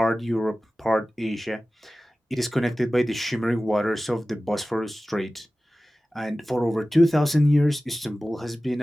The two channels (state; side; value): normal; both; correlation 0.96